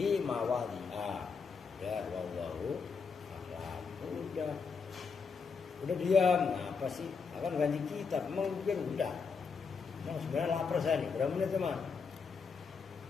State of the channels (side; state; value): right; quieter; 5.3 dB